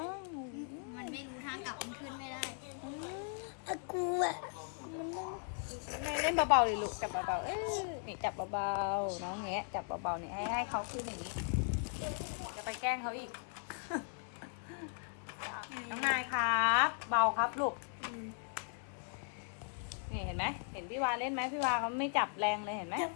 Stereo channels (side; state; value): right; silent; 52 dB below the other